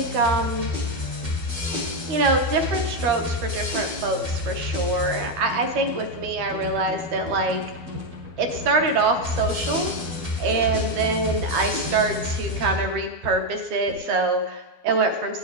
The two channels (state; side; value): late; left; 12 ms